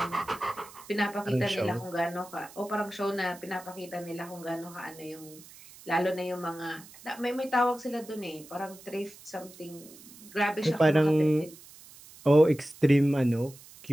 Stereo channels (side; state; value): right; noise; hiss, 20 dB below the sound